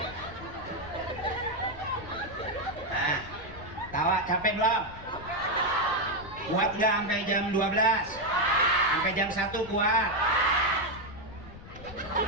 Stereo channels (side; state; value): left; noise; rumble, 16 dB below the sound